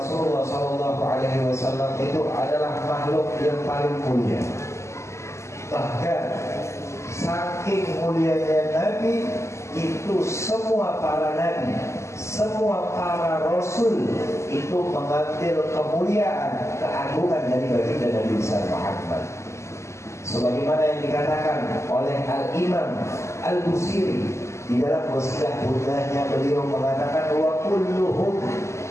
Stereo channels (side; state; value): right; late; 0.13 ms